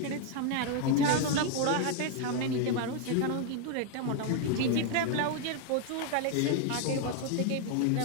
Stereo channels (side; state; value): both; different; correlation 0.01